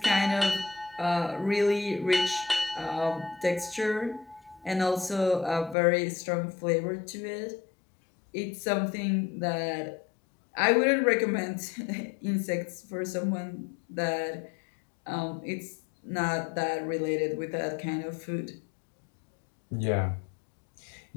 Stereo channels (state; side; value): drops out; right; at 5.8 s